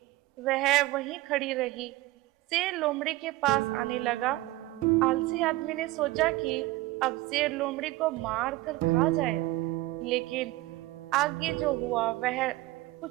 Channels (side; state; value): left; quieter; 18.8 dB